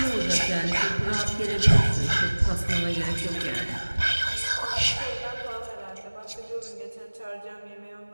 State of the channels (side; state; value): both; inverted; correlation -1.00